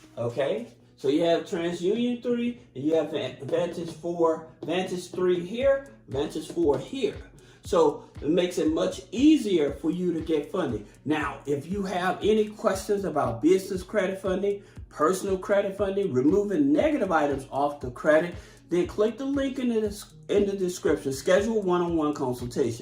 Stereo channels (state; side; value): identical; both; correlation 1.00